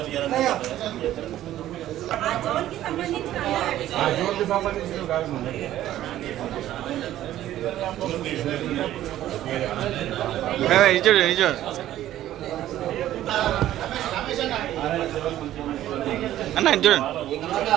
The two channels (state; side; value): quieter; left; 13.2 dB